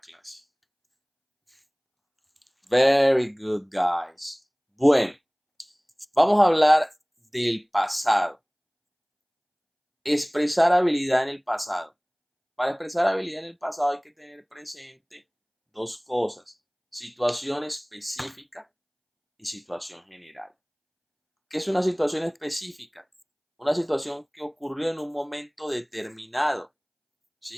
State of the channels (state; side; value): identical; both; correlation 1.00